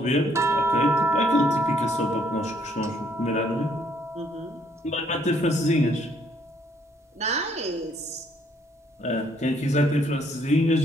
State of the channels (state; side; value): normal; both; correlation 0.67